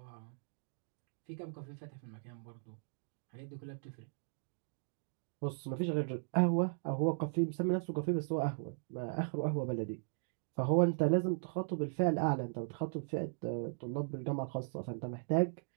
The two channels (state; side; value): silent; left; digital silence